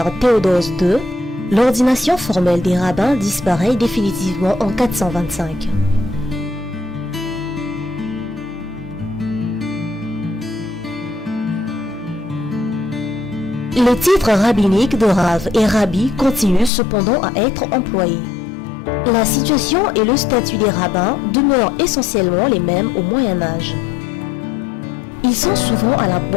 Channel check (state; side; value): drops out; right; at 16.7 s